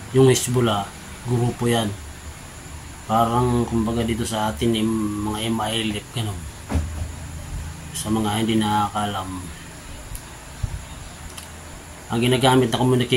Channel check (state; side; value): identical; both; correlation 1.00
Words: yung Hezbollah, grupo yan. Parang kumbaga dito sa atin mga MILF, ganun. Sa mga hindi nakakalam, ang ginagamit na